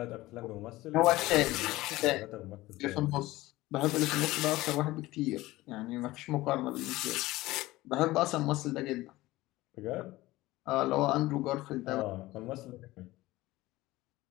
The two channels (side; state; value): right; quieter; 18.3 dB